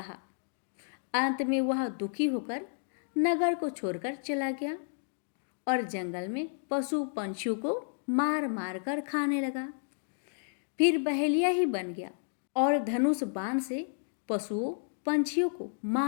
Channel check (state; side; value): silent; right; digital silence